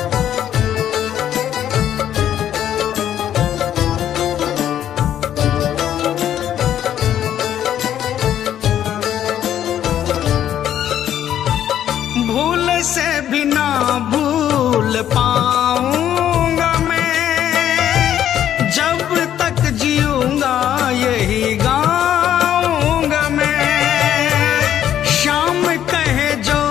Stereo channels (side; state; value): right; quieter; 10.7 dB